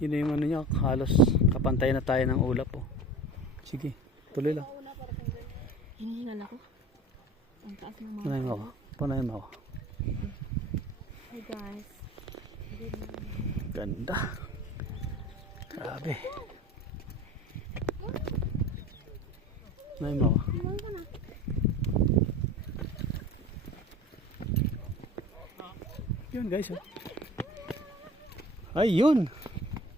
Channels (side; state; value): both; normal; correlation 0.38